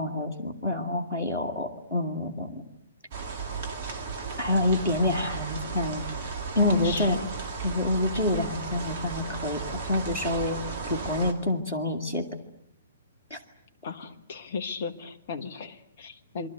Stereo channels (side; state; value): both; inverted; correlation -0.49